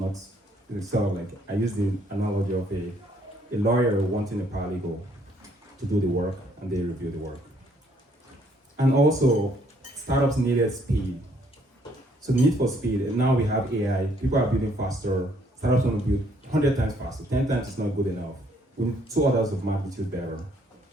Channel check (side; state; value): both; normal; correlation 0.66